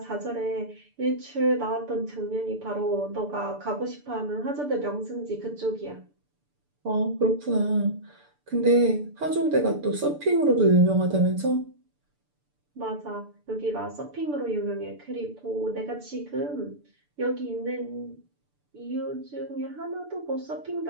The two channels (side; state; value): left; late; 6.8 ms